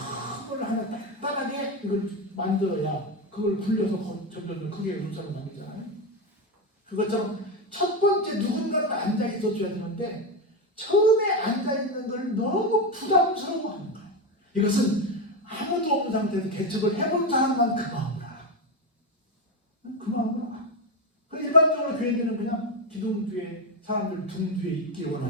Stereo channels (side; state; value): both; normal; correlation 0.12